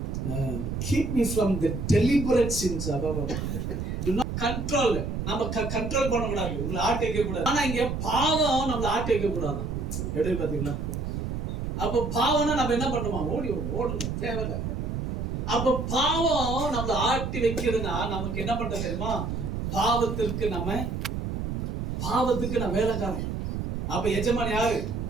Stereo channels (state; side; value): noise; right; rumble, 3 dB below the sound